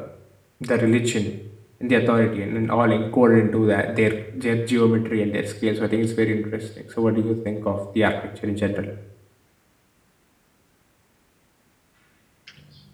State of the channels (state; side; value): identical; both; correlation 1.00